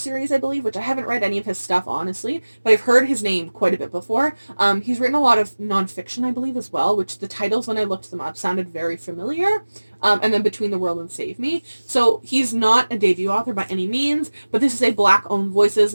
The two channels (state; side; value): inverted; both; correlation -1.00